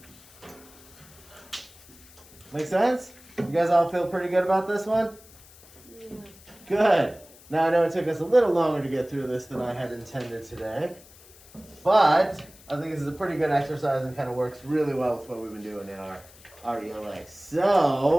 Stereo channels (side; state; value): left; noise; hiss, 23 dB below the sound